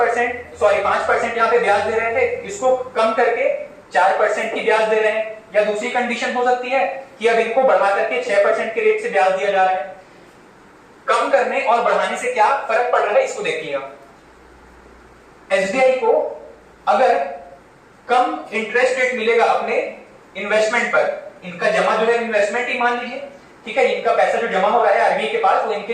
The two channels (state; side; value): identical; both; correlation 1.00